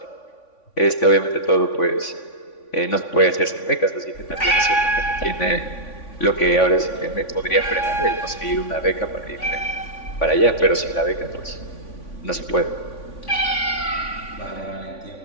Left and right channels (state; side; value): late; right; 3.5 ms